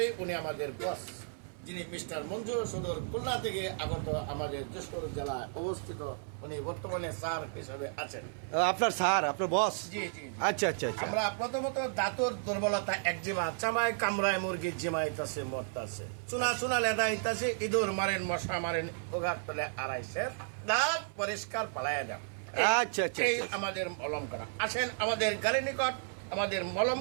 উনি আমাদের বস, যিনি মিস্টার মঞ্জু, সুদূর খুলনা থেকে আগত, আমাদের যশোর জেলায় অবস্থিত। উনি বর্তমানে স্যার হিসেবে আছেন। আপনার স্যার, আপনার বস? জি জি। আচ্ছা আচ্ছা আচ্ছা। আমরা প্রথমত দাঁতর দুর্বলতা, একজিমা, চামায় কামড়ায় মুরগি জিমাইতাছে মরতাছে, চুনা চুনা লেদাইতাছে, ইঁদুর মারেন, মশা মারেন, ওগার তলে আড়াইছে, দাঁত পরিষ্কার পালাইয়া দেন। আচ্ছা আচ্ছা এই আচ্ছা। আমাদের মলমখানা। আসেন আমাদের গাড়ি নিকট, আমাদের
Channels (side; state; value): left; silent; 56 dB below the other